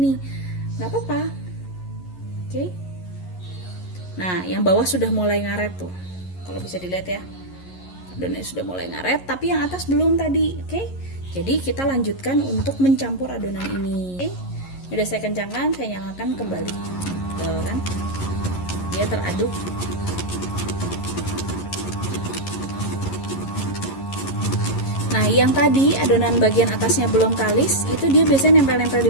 Gak apa-apa. Oke. Nah, yang bawah sudah mulai ngaret tuh. Kalau bisa dilihat ya. Adonannya sudah mulai ngaret, tapi yang atas belum tadi. Oke. Jadi kita lanjutkan untuk mencampur adonan ini. Oke. Udah saya kencangkan, saya nyalakan kembali. Tuh kan. Dia teraduk. Nah, yang tadi adonan bagian atasnya belum kalis, itu dia biasanya nempel-nempel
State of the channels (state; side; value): late; right; 11 ms